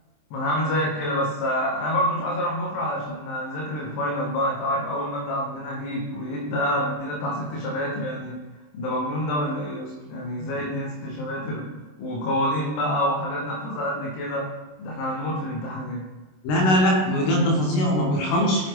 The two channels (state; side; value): late; right; 27 ms